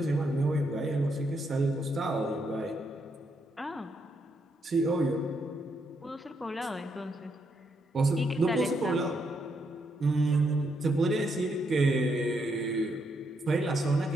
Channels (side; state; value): both; normal; correlation 0.78